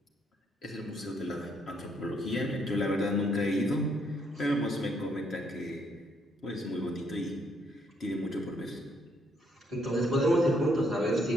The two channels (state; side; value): normal; both; correlation 0.71